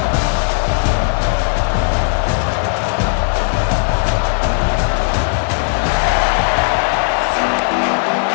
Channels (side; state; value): right; silent; 67 dB below the other